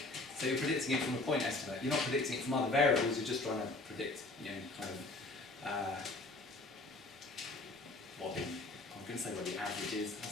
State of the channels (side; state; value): right; quieter; 3.0 dB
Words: So you're predicting it from a point estimate. You're not predicting it from other variables. You're just trying to predict, what I'm going to say what the average is.